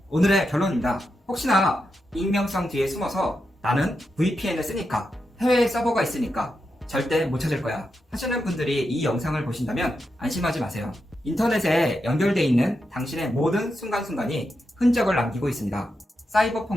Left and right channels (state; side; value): normal; both; correlation 0.86